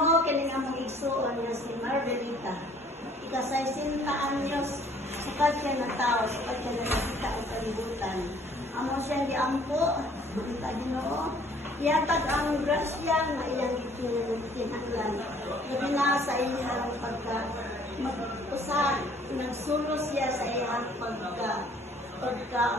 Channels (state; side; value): normal; both; correlation 0.58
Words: kining among igsuon nga si Margarita. Ika-60 anyos, sukat siya na tao, sukat siya na nakita ang kalibutan. Amo siya giampo, kita Ginoo. Iatag ang grasya nga iyang itinahanglan. Labi na sa iyang pagka-usa, nagsulos siya sa iyang